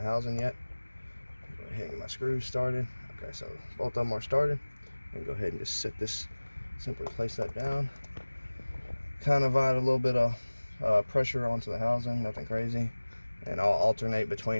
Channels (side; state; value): both; inverted; correlation -1.00